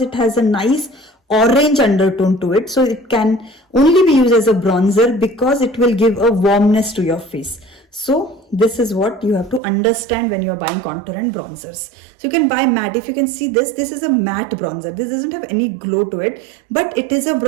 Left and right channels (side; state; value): left; drops out; at 9.6 s